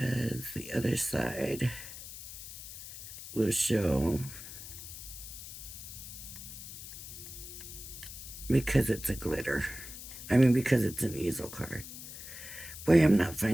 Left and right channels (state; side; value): noise; left; hiss, 11 dB below the sound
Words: the other side will show because it's a glitter. I mean, because it's an easel card. Boy, I'm not